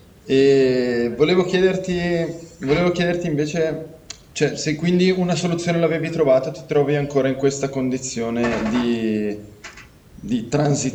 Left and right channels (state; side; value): identical; both; correlation 1.00